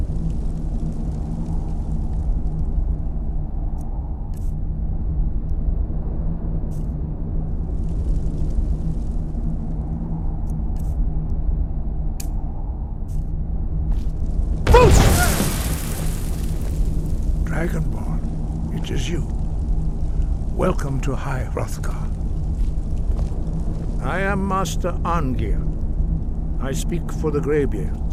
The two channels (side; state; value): both; identical; correlation 1.00